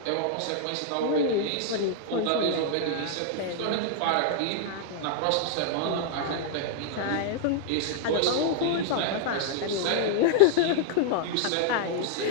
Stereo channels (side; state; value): both; different; correlation -0.01